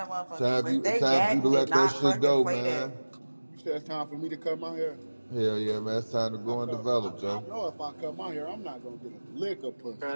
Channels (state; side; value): inverted; both; correlation -1.00